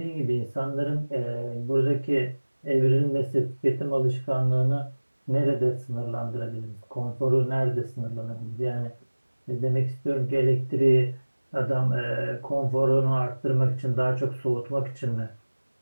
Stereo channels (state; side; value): inverted; both; correlation -1.00